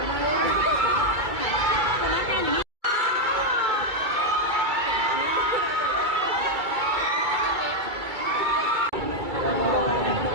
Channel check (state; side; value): late; left; 2.3 ms